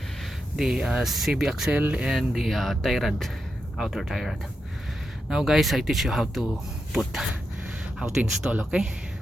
the CB axle and the tie rod, outer tie rod. Now guys, I teach you how to install. Okay,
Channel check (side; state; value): both; normal; correlation 0.86